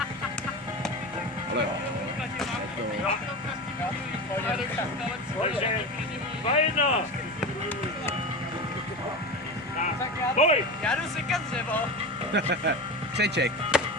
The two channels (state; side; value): normal; both; correlation 0.26